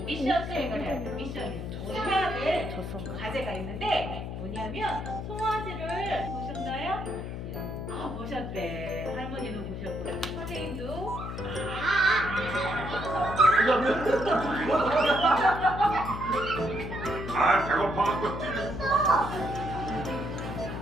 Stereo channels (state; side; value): noise; left; hum, 7 dB below the sound